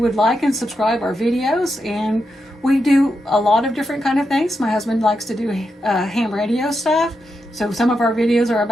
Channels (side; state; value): both; normal; correlation 0.86